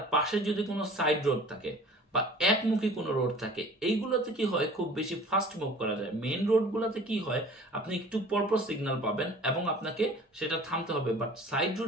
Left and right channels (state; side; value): normal; both; correlation 0.45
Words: পাশে যদি কোনো সাইড রোড থাকে বা একমুখী কোনো রোড থাকে, এইগুলোতে কি হয় খুব বেশি ফাস্ট মুভ করা যায়। মেন রোডগুলোতে কি হয় আপনি একটু পরপর সিগন্যাল পাবেন এবং আপনাকে সেটা থামতে হবে। বাট সাইড